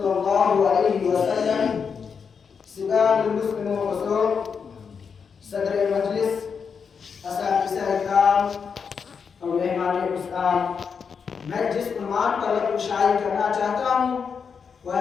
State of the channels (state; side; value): quieter; right; 6.2 dB